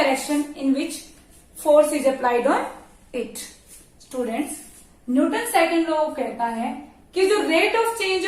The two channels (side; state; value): both; identical; correlation 1.00